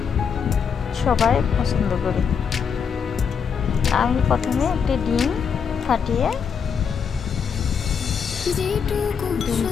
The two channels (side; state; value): right; quieter; 6.7 dB